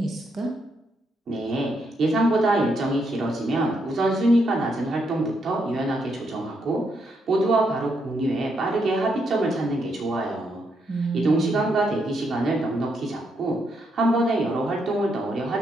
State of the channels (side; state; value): both; normal; correlation 0.78